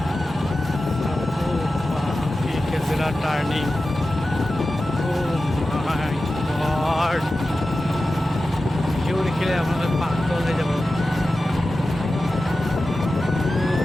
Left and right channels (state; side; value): normal; both; correlation 0.94